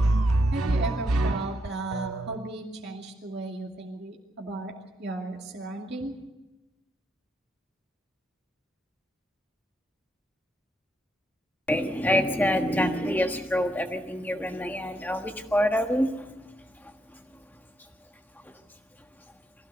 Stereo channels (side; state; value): both; normal; correlation 0.78